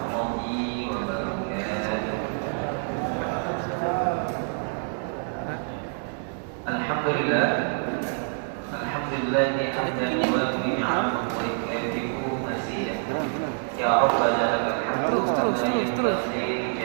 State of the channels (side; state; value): left; silent; 60 dB below the other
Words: wabarakatuh. Alhamdulillah. Alhamdulillah hamdan yuwafi ni'amahu wa yukafi'u mazidah. Ya Rabbana lakal hamdu Terus.